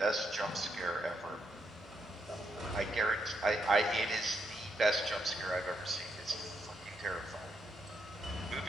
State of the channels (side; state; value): both; normal; correlation 0.78